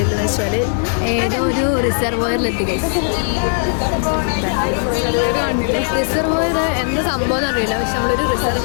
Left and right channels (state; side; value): silent; right; digital silence